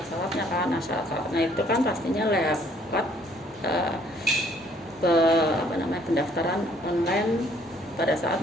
kan. Nah, syarat-syaratnya itu kan pastinya lewat pendaftaran online pada saat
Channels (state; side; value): normal; both; correlation 0.61